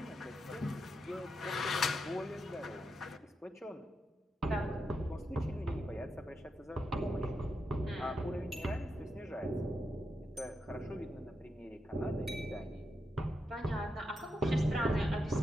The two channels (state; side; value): normal; both; correlation 0.85